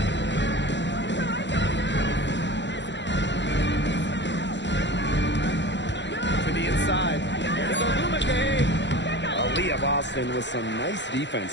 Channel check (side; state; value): right; late; 0.52 ms